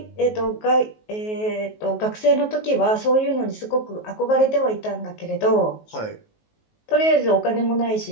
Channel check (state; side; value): late; right; 19 ms